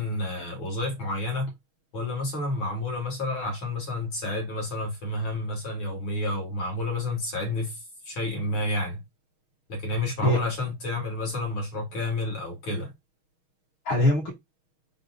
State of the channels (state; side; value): late; right; 6.3 ms